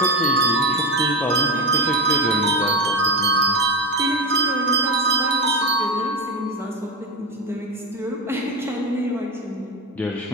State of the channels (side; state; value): both; normal; correlation 0.17